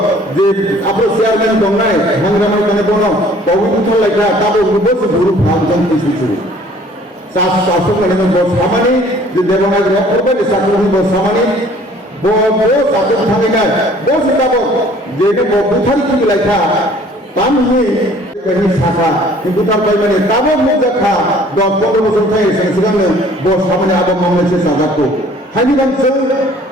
जे आपले शेअरमॅन दोंगनाय हंगामाय कने बोनो, पवित्र लायका ताबो रुबस गुरु भांजन तिसुचु. शासक कने बो सामानी जे देवनाय रखोबे साकरनि बो सामानी बो साकन थांगिना बो सिताबो जेने बो बुथारि कि लायका तामहि कनि साखा किन्तु तार बायमाने ताबो मुजाखा 10-15 বছর थाय सिगांनो बो सामानी आबो मावनायसे साजाखौ हानि बांसो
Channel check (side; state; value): both; normal; correlation 0.54